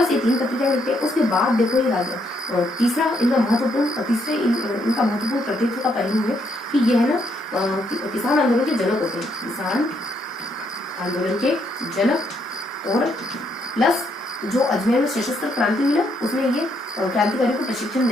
ये 3 पत्रिकाएं लिखते हैं। उसके बाद देखो ये तीसरा इनका महत्वपूर्ण प्रतिनिधित्व का पहलू है कि ये है ना किसान आंदोलन के जनक होते हैं, किसान आंदोलन के जनक, और प्लस जो अजमेर में सशस्त्र क्रांति हुई ना, उसमें ये क्रांतिकारियों को प्रशिक्षण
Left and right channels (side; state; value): both; normal; correlation 0.74